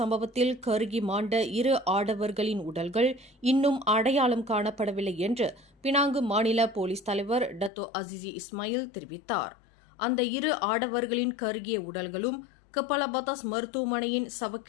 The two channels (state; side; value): drops out; right; at 7.7 s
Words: கருகி மாண்ட 2 ஆடவர்களின் உடல்கள் இன்னும் அடையாளம் காணப்படவில்லை என்று பினாங்கு மாநில போலீஸ் தலைவர் டத்தோ அசிசி இஸ்மாயில் தெரிவித்தார். அந்த 2 ஆடவர்களின் கருகிய உடல்களும் கப்பலபதாஸ் மருத்துவமனையின்